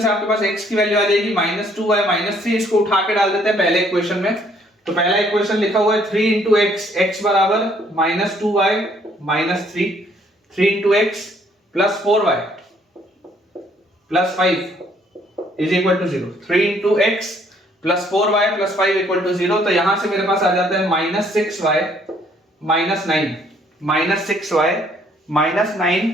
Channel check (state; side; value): normal; both; correlation 0.64